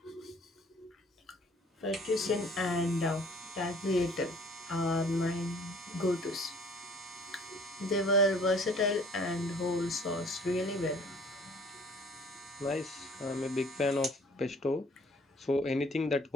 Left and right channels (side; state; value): both; normal; correlation 0.54